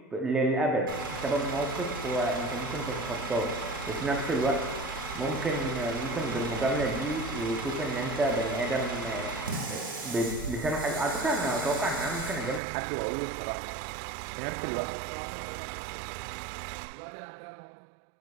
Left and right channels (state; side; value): drops out; left; at 12.6 s